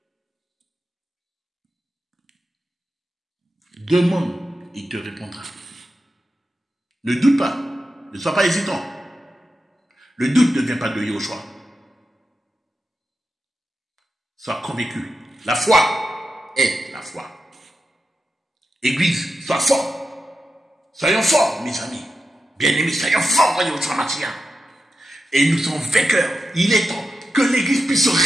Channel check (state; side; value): normal; both; correlation 0.89